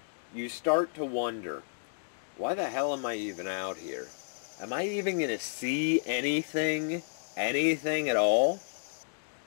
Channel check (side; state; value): right; silent; digital silence